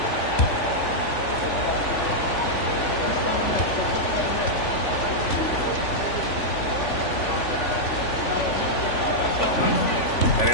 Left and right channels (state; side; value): late; right; 3.5 ms